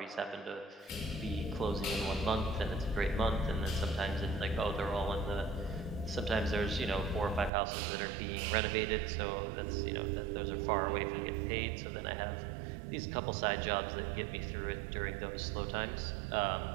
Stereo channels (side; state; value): left; drops out; at 7.5 s